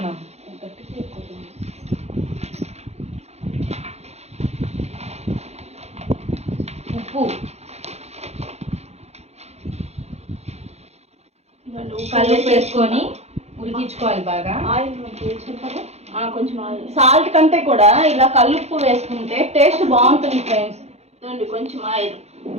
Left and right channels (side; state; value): left; late; 0.31 ms